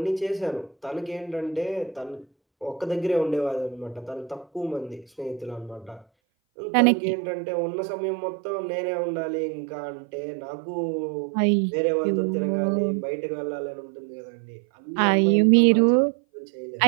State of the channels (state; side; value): drops out; left; at 6.1 s